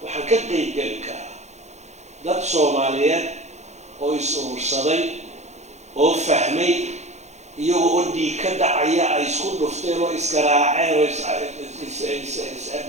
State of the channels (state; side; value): late; left; 0.33 ms